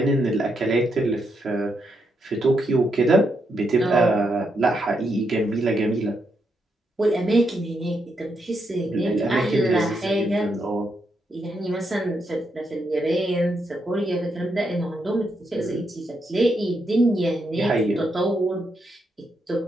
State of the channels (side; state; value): both; normal; correlation 0.80